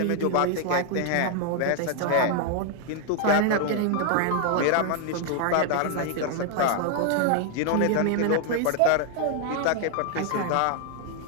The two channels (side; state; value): both; different; correlation 0.00